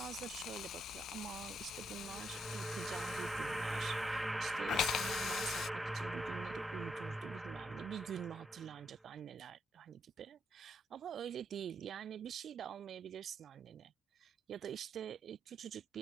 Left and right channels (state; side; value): normal; both; correlation 0.78